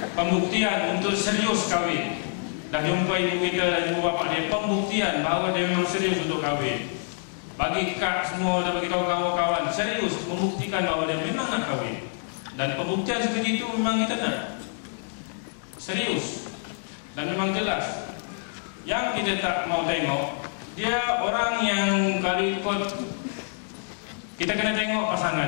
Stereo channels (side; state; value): right; silent; digital silence